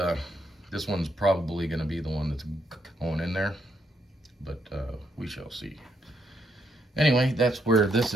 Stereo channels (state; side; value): normal; both; correlation 0.77